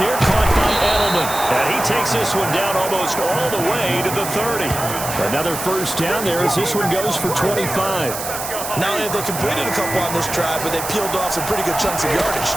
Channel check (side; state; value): right; noise; hiss, 7 dB below the sound